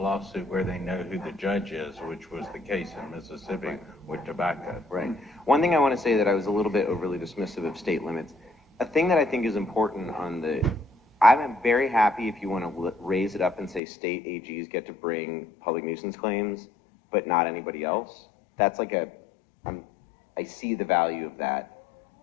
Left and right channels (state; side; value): drops out; right; at 13.8 s